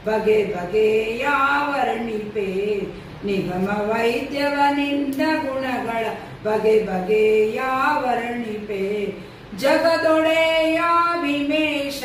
ಬಗೆ ಬಗೆಯ ವರ್ಣಿಪೆ, ನಿಗಮ ವೈದ್ಯವ ನಿನ್ನ ಗುಣಗಳ ಬಗೆ ಬಗೆಯ ವರ್ಣಿಪೆ. ಜಗದೊಡೆಯ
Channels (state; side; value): identical; both; correlation 1.00